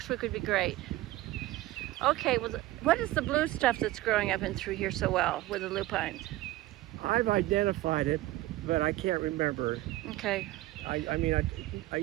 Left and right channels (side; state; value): left; quieter; 17.0 dB